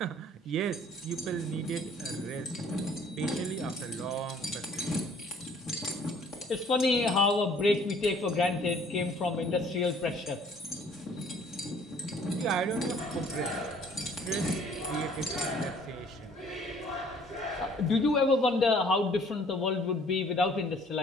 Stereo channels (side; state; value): both; normal; correlation 0.57